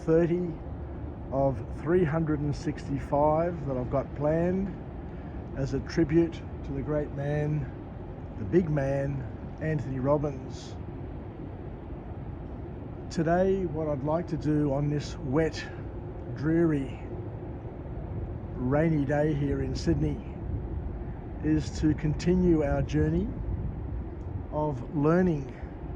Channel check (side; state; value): both; identical; correlation 1.00